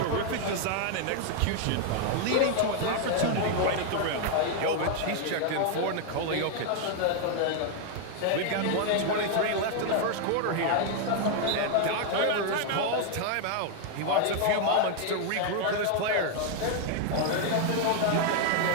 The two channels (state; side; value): different; both; correlation 0.00